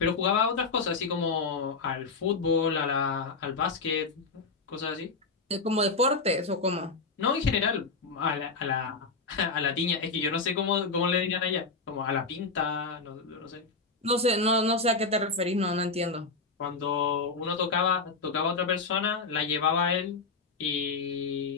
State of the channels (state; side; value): quieter; right; 4.1 dB